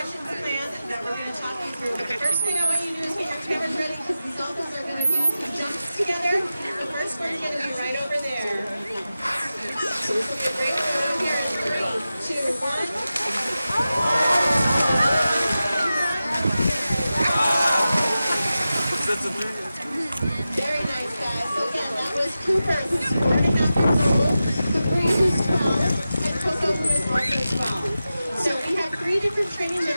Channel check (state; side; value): inverted; both; correlation -0.93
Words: planned that we're going to talk you through. But the first thing I want you to do is get your cameras ready because these Dolphins are going to do some jumps together. The first one's going to be right over there. So this will be a great one here in 3, 2, 1. Very nice, guys. So again, that was Cooper, who's 4.5 years old, Capri, who's 12, and Koko, who is also 12. So we have 3 different training